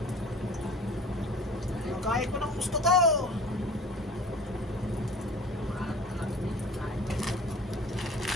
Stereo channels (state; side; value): normal; both; correlation 0.44